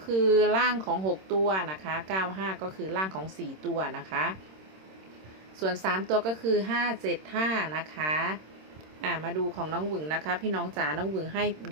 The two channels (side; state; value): left; late; 26 ms